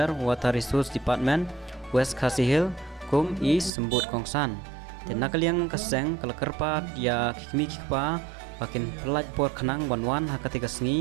water resource department West Khasi Hill kum is sembut kong san te nakaliang kaseng kala kerpat ya kikmi kikpa bakin pelaj por khanang banwan hakati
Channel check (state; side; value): drops out; left; at 3.7 s